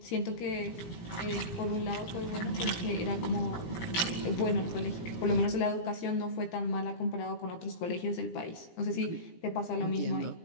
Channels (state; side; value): late; right; 17 ms